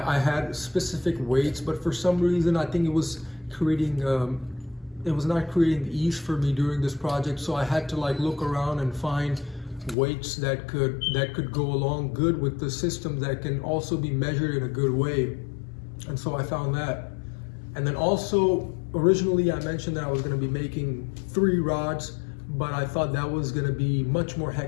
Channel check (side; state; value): right; drops out; at 10.0 s